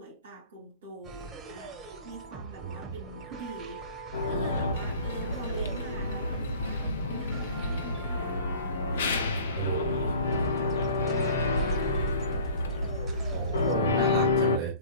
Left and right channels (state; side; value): inverted; both; correlation -0.46